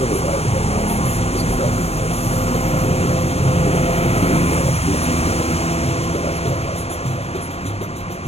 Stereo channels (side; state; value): right; late; 0.30 ms